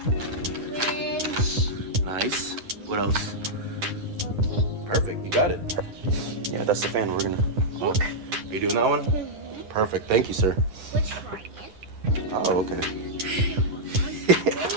Nice. What else? Perfect. You got it. Yeah, that's the fan. We're gonna. Look. You doing that one? Perfect. Thank you, sir. Which one? Oh, okay.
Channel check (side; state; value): left; late; 10 ms